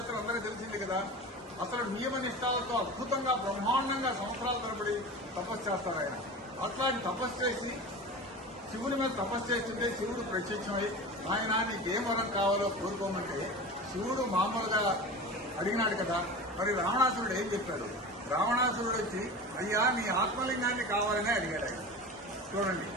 అందరికీ తెలిసింది కదా. అసలు నియమ నిష్ఠాలతో అద్భుతంగా బ్రహ్మాండంగా సంవత్సరాల తరబడి తపస్సు చేస్తారు ఆయన. అట్లాంటి తపస్సు చేసి శివుని మీద తపస్సు చేస్తుంటే శివుడు ప్రత్యక్షమై ఆయన నీకేం వరం కావాలో కోరుకోమంటే శివుడు మామూలుగా అడిగినాడు కదా. మరి రావణాసురుడు ఏం చెప్పాడు? రావణాసురుడు వచ్చి అయ్యా నీ ఆత్మలింగాన్ని కావాలని అడిగాడు ఆయన. చూడండి,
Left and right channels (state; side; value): normal; both; correlation 0.32